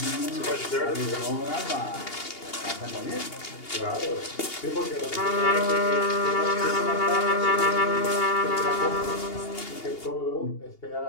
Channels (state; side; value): late; right; 2.8 ms